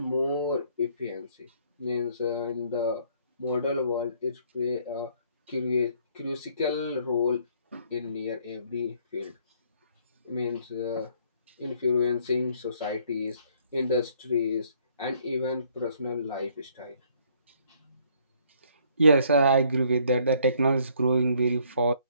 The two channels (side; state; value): both; inverted; correlation -0.64